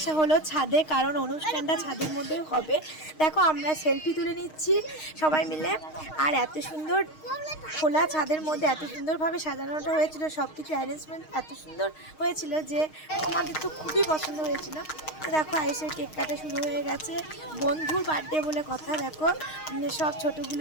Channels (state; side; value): late; right; 6.4 ms